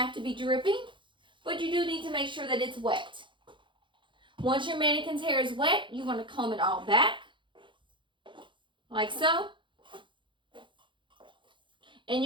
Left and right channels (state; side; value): late; left; 0.23 ms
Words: to be dripping, but you do need to make sure that it's wet. Once your mannequin's hair is wet, you want to comb it all back, like so. And